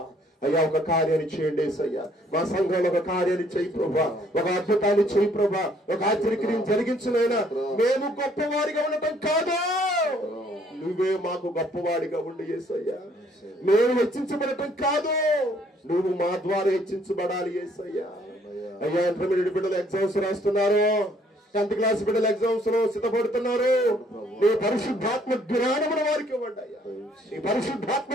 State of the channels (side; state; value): both; normal; correlation 0.63